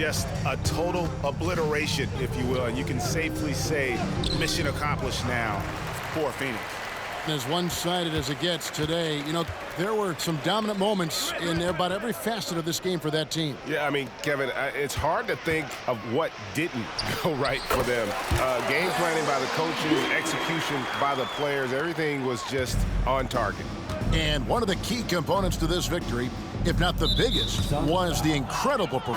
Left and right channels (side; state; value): both; identical; correlation 1.00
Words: a total obliteration, if you will. And you can safely say mission accomplished now for Phoenix. As one-sided as it gets today, you know, there were some dominant moments in about every facet of this game for that team. Yeah, I mean, Kevin, it's hard to think of what didn't go right for them. Game planning by the coaches, execution by the players, everything was just on target. And one of the key components to this victory if not the biggest, was the incredible